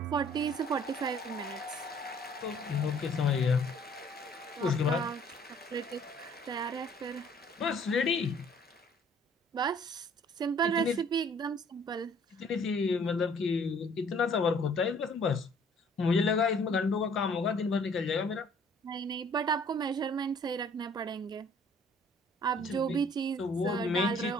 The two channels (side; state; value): both; normal; correlation 0.57